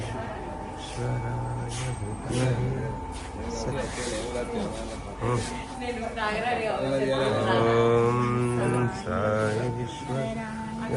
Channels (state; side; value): identical; both; correlation 1.00